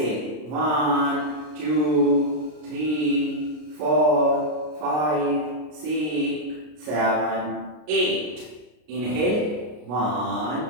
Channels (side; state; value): left; late; 33 ms